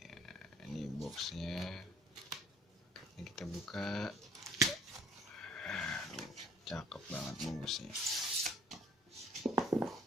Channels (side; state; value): both; normal; correlation 0.58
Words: Ini boxnya, ini kita buka. Cakep banget bungkusnya.